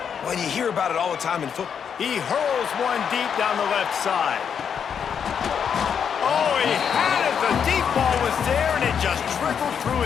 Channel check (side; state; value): right; quieter; 7.4 dB